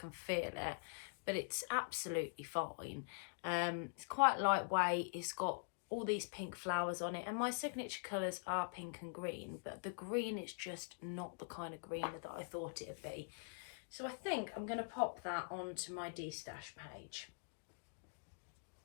feel it. But it's absolutely fine. It's quite lightweight. It's got all these pink flowers on it, and my signature colours are pink and green, but the green is just not the kind of green that I thought it would be. So I think I'm going to pop that onto my destash page.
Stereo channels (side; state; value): right; silent; digital silence